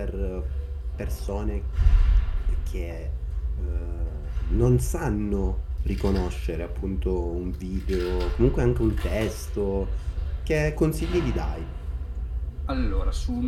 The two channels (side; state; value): both; identical; correlation 1.00